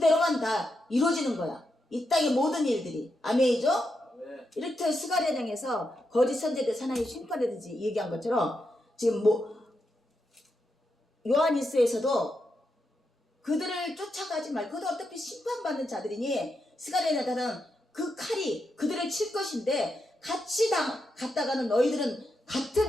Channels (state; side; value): normal; both; correlation 0.84